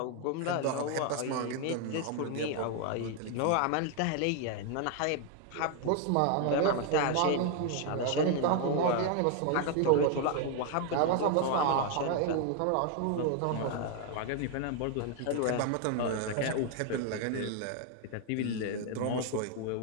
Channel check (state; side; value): different; both; correlation 0.00